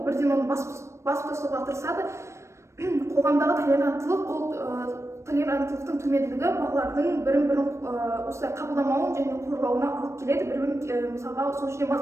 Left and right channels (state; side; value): late; left; 0.13 ms